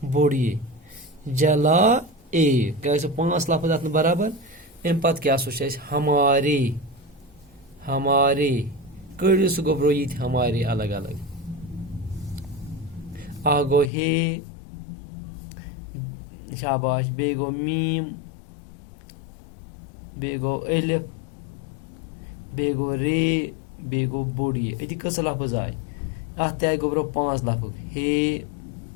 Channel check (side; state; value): right; drops out; at 13.9 s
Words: बोड़िए जला ए क्या 5 लफ्ज अत बराबर। अम पत क्या हमारे, हमारे कड़ो सह गोबरो ये हमारे अलग अलग। आगो हे, शाबाश। बे गो मीम, बेगो अलिफ, बेगो रे, बेगो बोड़िए। अति कस लफ्ज आय अत गोबरो 5 लफ्ज हे